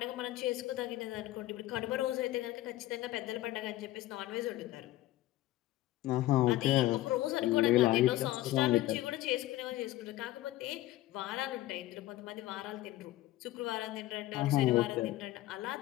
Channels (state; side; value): quieter; right; 15.9 dB